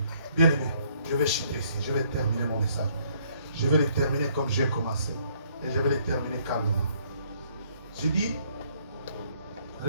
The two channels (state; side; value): inverted; both; correlation -0.64